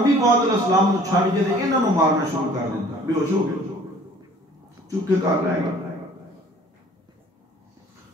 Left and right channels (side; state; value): both; normal; correlation 0.52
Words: پاک علیہ السلام نے چھڑ کے انہاں نوں مارنا شروع کر دیتا. بے ہوش ہو گئے، چپ کے کر رہے گا